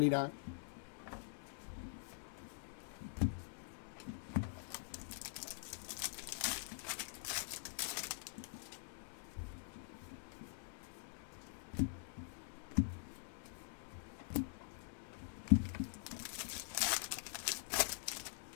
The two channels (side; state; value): right; silent; digital silence